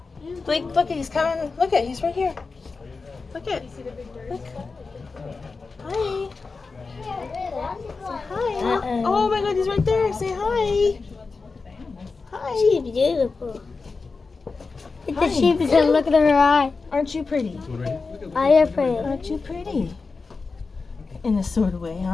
Blake, look, he's coming. Look at, he's right here. Look at. Look. Hi. Hi. Oh my God, he's right there. Say hi. Hi. She's beautiful. Look Hi. at the sheep and look at her eye. Aren't you pretty? I am pretty. Aren't you pretty? In a sort of way,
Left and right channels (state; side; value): quieter; right; 4.3 dB